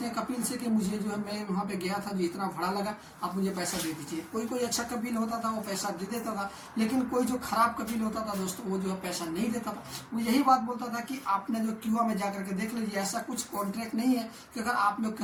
हैं कपील से कि मुझे जो है मैं वहां पे गया था जो इतना भाड़ा लगा, आप मुझे पैसा दे दीजिए। कोई अच्छा कपील होता था वो पैसा दे देता था, लेकिन कोई जो खराब कपील होता था दोस्तों वो जो है पैसा नहीं देता था। वो यही बात बोलता था कि आपने जो क्यूआ में जाकर के देख लीजिए, ऐसा कुछ कॉन्ट्रैक्ट नहीं है कि अगर आप लोग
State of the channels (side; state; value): both; identical; correlation 1.00